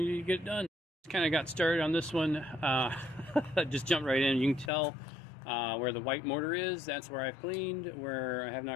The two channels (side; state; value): right; drops out; at 4.7 s